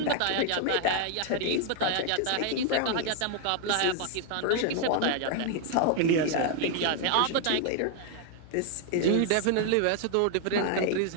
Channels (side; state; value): both; different; correlation 0.00